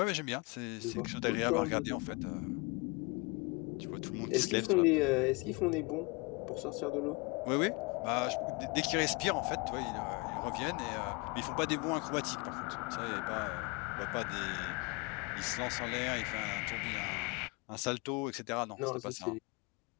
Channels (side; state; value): right; quieter; 28.7 dB